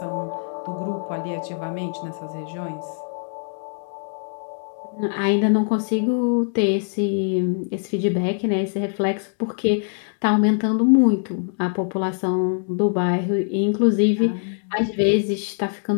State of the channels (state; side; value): silent; right; digital silence